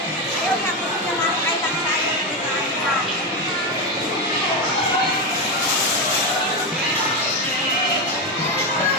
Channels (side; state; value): both; normal; correlation 0.12